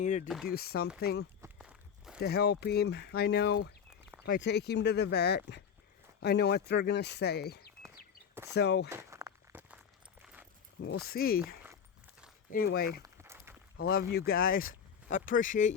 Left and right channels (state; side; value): quieter; right; 7.5 dB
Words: to do something to help him. I know if I take him to the vet, I know what they're gonna say. So we'll see. Anyway, I love you guys. I appreciate